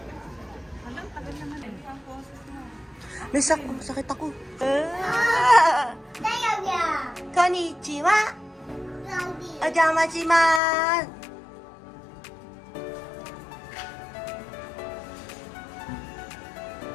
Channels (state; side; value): drops out; right; at 10.6 s